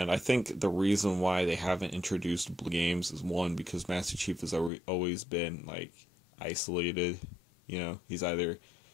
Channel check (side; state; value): right; drops out; at 4.7 s